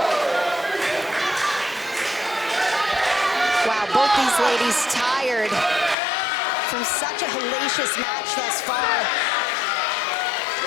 Wow, both these ladies tired from such a hellacious match thus far.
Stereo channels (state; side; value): drops out; right; at 6.0 s